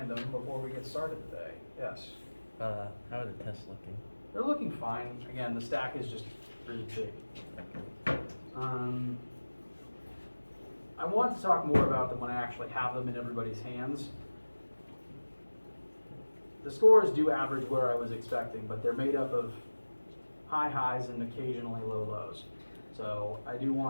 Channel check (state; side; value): inverted; both; correlation -1.00